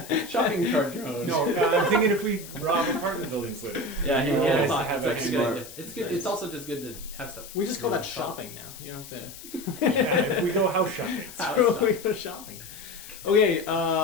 Shopping cart drone. No, I'm thinking if we rob apartment buildings later. Yeah, Oh, yeah, nice to it's have like that a good smart. idea. It's good. It's also just good to have stuff. We just call that Shop. shopping now. You don't have Yeah, if we go house shopping. to. We go shopping. Okay,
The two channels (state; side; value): noise; left; hiss, 15 dB below the sound